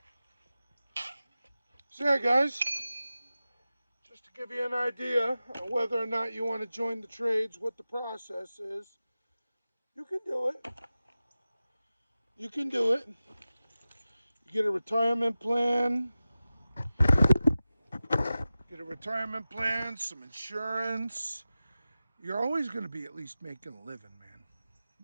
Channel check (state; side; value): inverted; both; correlation -0.95